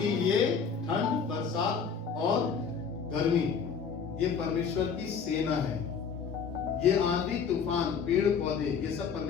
ये ठंड, बरसात और गर्मी ये परमेश्वर की सेना है। ये आंधी तूफान, पेड़ पौधे, ये सब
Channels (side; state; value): right; quieter; 6.2 dB